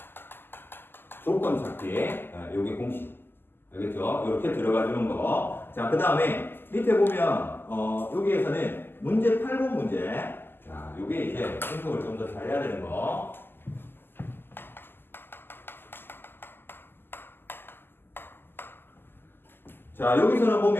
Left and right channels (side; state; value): right; late; 0.099 ms